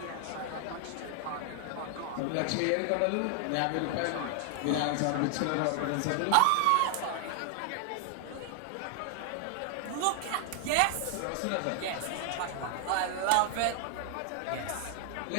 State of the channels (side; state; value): both; different; correlation 0.00